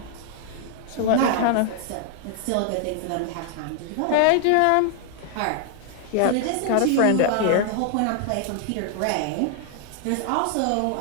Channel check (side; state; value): both; different; correlation 0.00